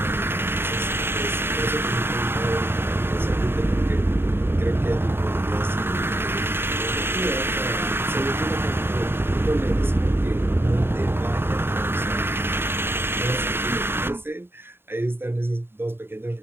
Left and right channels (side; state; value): left; late; 0.11 ms